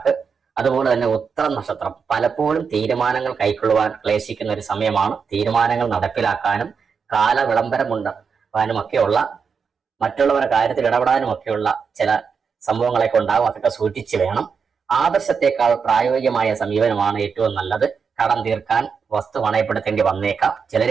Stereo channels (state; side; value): quieter; left; 5.9 dB